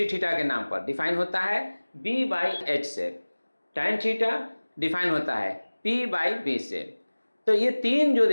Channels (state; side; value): inverted; both; correlation -1.00